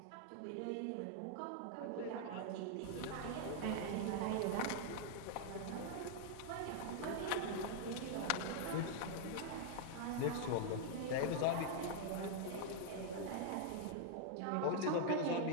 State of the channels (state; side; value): different; both; correlation -0.01